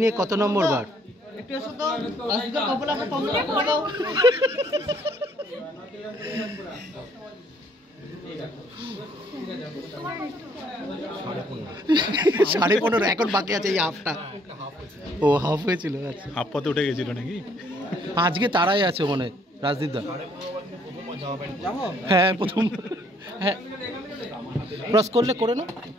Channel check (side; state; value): both; normal; correlation 0.65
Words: নিয়ে কত নম্বর বার? সাড়ে 15 এখন বাকি আছে এই হাফটা। ও হাফ হয়েছিল, আচ্ছা হাফ পথে উঠে গেছিল নাকি? আজকে তারাই আছে মনে হয় রাজদীপ দা। হ্যাঁ প্রথম, হ্যাঁ ক্রস করলে করে না।